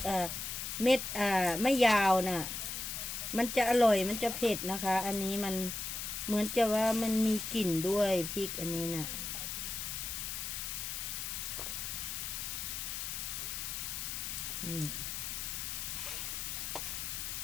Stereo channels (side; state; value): left; noise; hiss, 4 dB below the sound